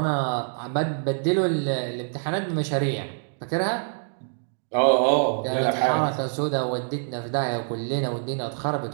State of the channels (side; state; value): left; silent; digital silence